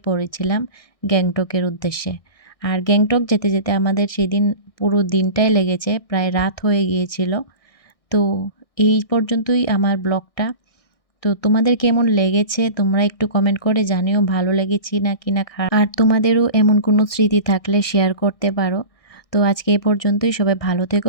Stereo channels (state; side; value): late; right; 1.6 ms